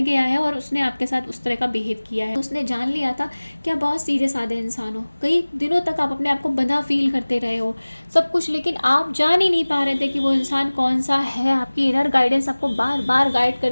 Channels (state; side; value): inverted; both; correlation -1.00